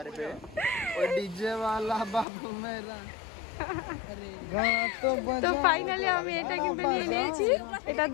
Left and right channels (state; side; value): drops out; right; at 2.2 s